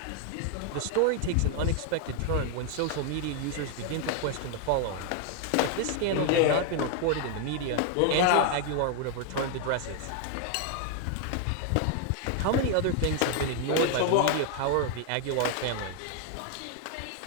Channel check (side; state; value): both; different; correlation 0.00